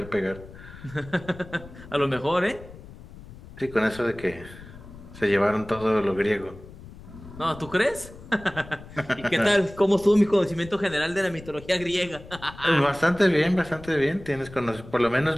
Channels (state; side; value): noise; left; rumble, 17 dB below the sound